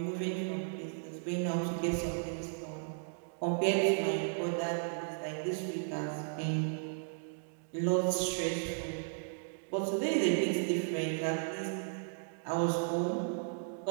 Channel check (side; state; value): left; silent; digital silence